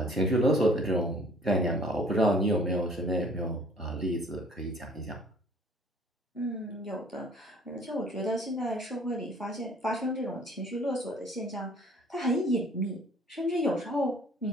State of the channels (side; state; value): both; normal; correlation 0.54